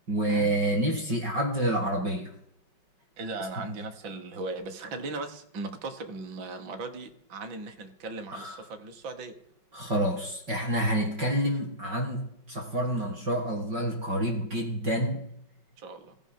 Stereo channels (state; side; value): late; left; 5.3 ms